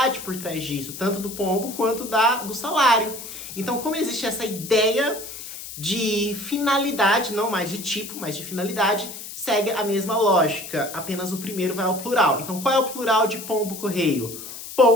por trás disso, tanto do pombo quanto do salário. Então, como existe essa ideia de finalidade, não mais de tipo, mas de finalidade, segue a mesma lógica, apenas o primeiro vai ao plural. Então, qual é o plural de pombo correio?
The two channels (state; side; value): noise; left; hiss, 11 dB below the sound